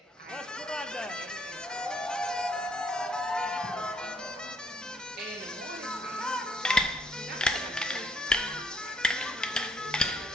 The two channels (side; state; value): both; normal; correlation 0.68